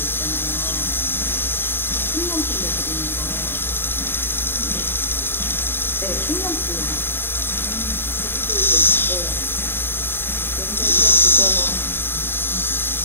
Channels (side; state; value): right; late; 0.10 ms